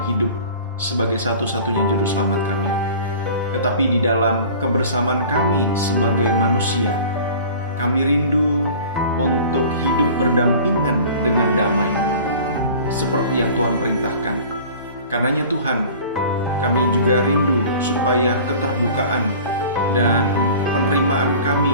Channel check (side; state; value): both; inverted; correlation -0.43